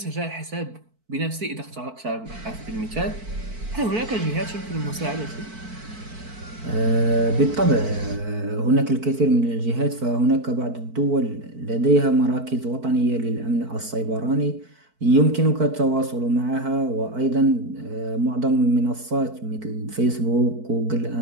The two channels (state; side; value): late; left; 4.5 ms